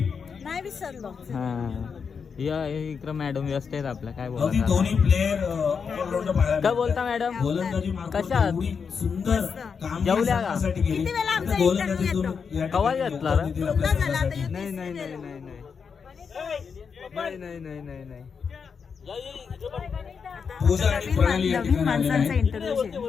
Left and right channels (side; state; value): right; quieter; 6.0 dB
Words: नाही विसरलो हा या इकडं मॅडम व्यस्त आहेत आपल्या काय अगदी बोलता दोन्ही प्लेयर ऑलराऊंडर पाहायला काय बोलता मॅडम गोलंदाजी मार्फत कशा आहात? एवढी सुंदर काम जेवल्या का? किती वेळा आमचा गोलंदाजीतून interview या कवा ठिकाणी घेतला रे? दिला आपल्या झाला आता संघासाठी. नाही नाही नाही नाही नाही नाही नाही नाही नाही नाही पूजा आणि प्रणाली या ठिकाणी आलेल्या